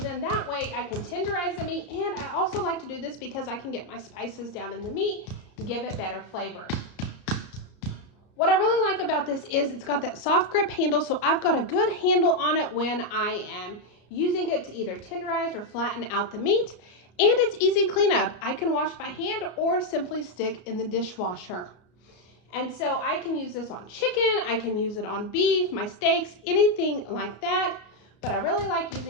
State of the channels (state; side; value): late; right; 34 ms